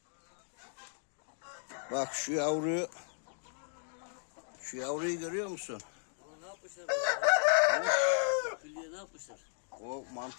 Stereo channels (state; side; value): silent; right; 54 dB below the other